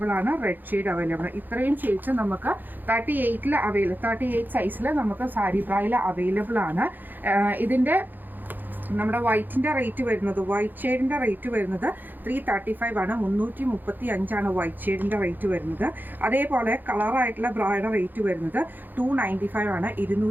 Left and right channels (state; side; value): late; left; 0.088 ms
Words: ആണ്. റെഡ് ഷെയ്ഡ് അവൈലബിൾ ആണ്. ഇത്രയും ഷെയ്ഡ്സ് നമുക്ക് 38 സൈസിൽ നമുക്ക് സാരി ബ്രയിൽ അവൈലബിൾ ആണ്. ഇതിൻ്റെ നമ്മുടെ വൈറ്റിൻ്റെ റേറ്റ് വരുന്നത്, വൈറ്റ് ഷെയ്ഡിൻ്റെ റേറ്റ് വരുന്നത് 335 ആണ്. 335 വൈറ്റ് ഷെയ്ഡിൻ്റെ റേറ്റ് വരുന്നത്. അതേപോലെ കളറായിട്ടുള്ള ബ്രയുടെ റേറ്റ് വരുന്നത് 295 ആണ്.